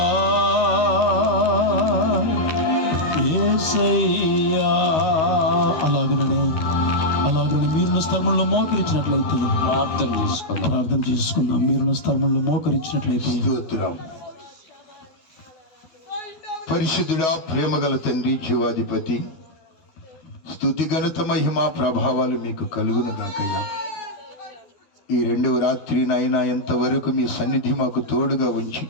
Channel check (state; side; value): late; right; 13 ms